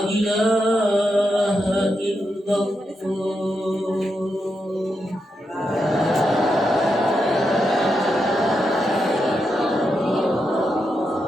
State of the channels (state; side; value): normal; both; correlation 0.85